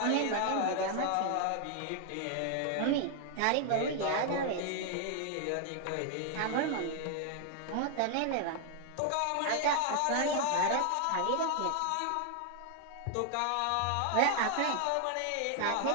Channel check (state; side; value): different; both; correlation 0.00